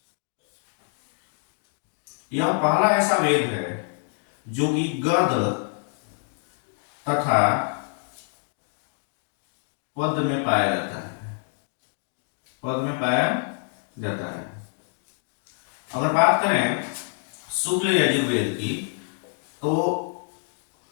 यह पहला ऐसा वेद है जो कि गद तथा पद में पाया जाता है, पद में पाया जाता है। अगर बात करें शुक्ल यजुर्वेद की तो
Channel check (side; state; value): right; silent; 61 dB below the other